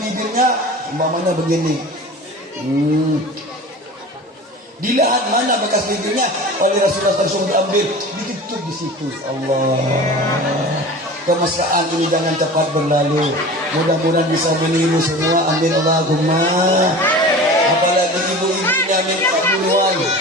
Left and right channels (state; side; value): normal; both; correlation 0.36